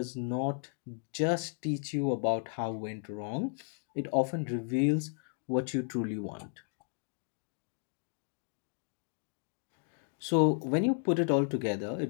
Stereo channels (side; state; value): right; silent; 55 dB below the other